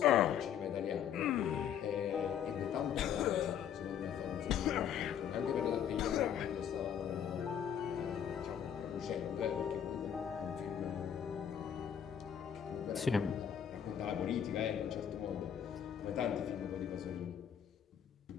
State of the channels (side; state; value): right; quieter; 8.9 dB